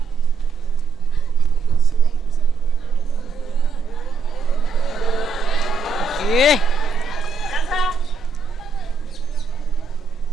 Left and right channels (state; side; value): quieter; left; 4.5 dB